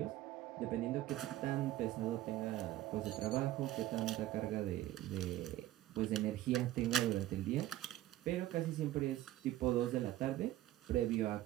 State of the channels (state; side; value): quieter; left; 14.7 dB